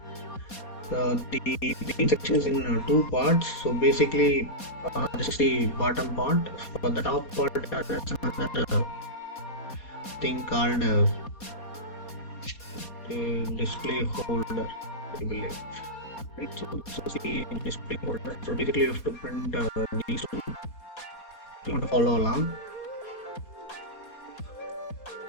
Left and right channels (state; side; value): late; right; 4.2 ms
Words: The main section is in two parts. So basically this is the bottom part. For the top part there's another thing called the display holder, I believe. Right, so this is the display holder. So basically you have to print these two. You want to follow along.